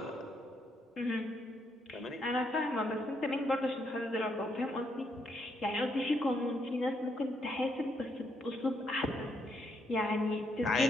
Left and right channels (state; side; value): normal; both; correlation 0.76